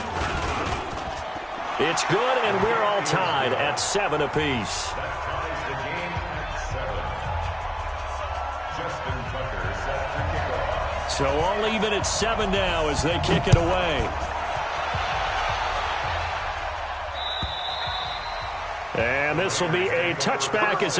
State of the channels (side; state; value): both; identical; correlation 1.00